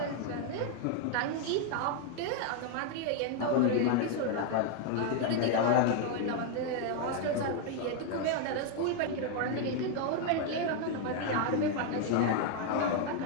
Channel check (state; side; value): different; both; correlation 0.01